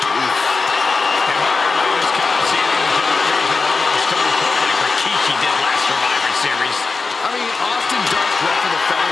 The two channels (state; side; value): quieter; right; 4.2 dB